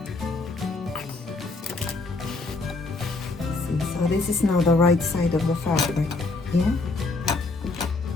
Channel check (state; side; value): quieter; right; 3.6 dB